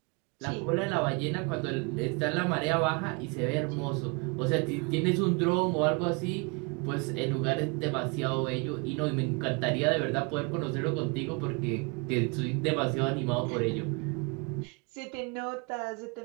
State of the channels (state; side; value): quieter; left; 30.1 dB